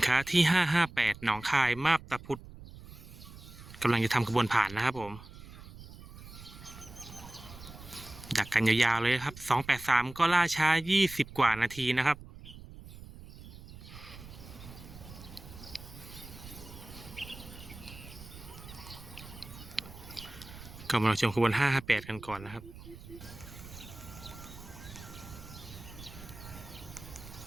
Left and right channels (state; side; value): noise; right; rumble, 16 dB below the sound